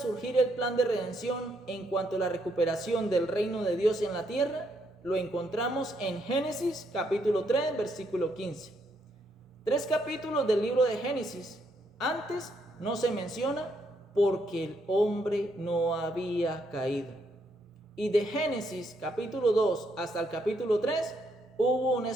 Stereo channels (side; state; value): both; normal; correlation 0.74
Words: el plan de redención en cuanto a la recuperación del reino de Dios en la tierra? Lo encontramos en Génesis capítulo 3, versículo 15. 3 capítulos del libro de Génesis. Antes no se menciona porque el hombre no había caído. Y de Génesis capítulo 2 hasta el capítulo 3 hubo un